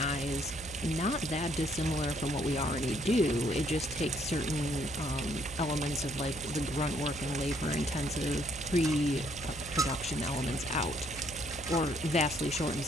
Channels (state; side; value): noise; right; hum, 14 dB below the sound